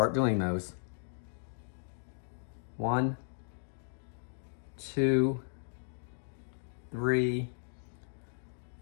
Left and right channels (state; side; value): silent; right; digital silence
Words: doing those. 1, 2, 3,